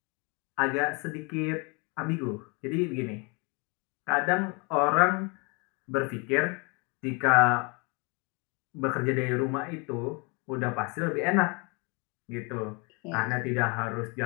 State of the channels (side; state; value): right; quieter; 31.0 dB